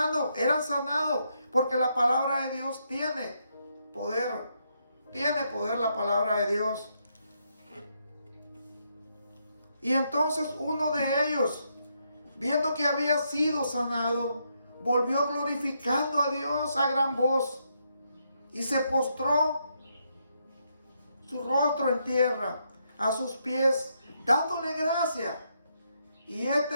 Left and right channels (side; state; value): both; inverted; correlation -0.78